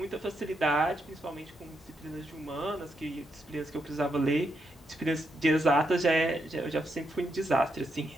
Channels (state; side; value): normal; both; correlation 0.81